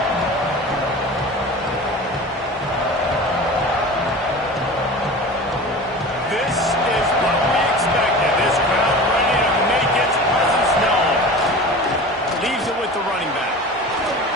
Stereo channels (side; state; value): both; normal; correlation 0.35